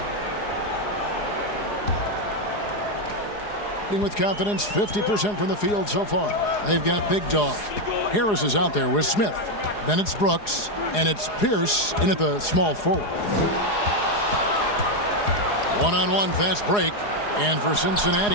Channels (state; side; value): late; right; 4.8 ms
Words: With confidence, 50% from the field so far. They've got Big Dog. Harris is out there with Smith. Then it's Brooks, and it's Pierce in at the small forward. One-on-one fast break, and for